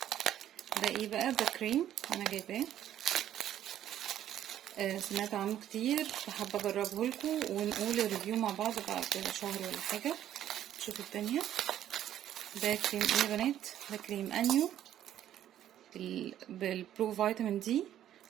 ده ايه بقى؟ ده كريم انا جايباه، سمعت عنه كتير فحابه اجربه لكم ونقول الريفيو مع بعض بعد شهر ولا حاجه. شوفوا التانية. ده كريم ايه يا بنات؟ ده كريم انيو بالبرو فيتامين دي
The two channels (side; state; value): left; quieter; 11.4 dB